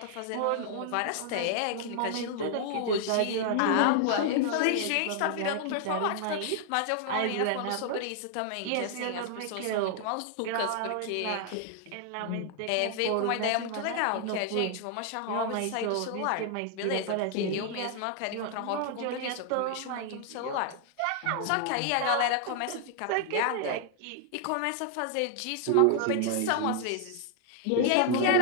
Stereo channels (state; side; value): different; both; correlation 0.00